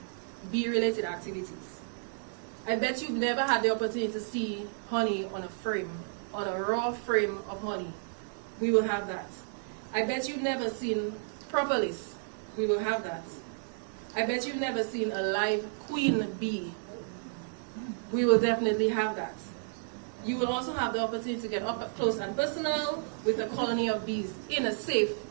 bee-related activities. I bet you've never had the opportunity to see honey on a frame, on a raw frame of honey. We will have that. I bet you've never seen propolis. We will have that. I bet you've never seen a live queen bee. We will definitely have that. You will also have the opportunity to get up close and personal with a colony of bees in a safe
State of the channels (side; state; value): left; silent; digital silence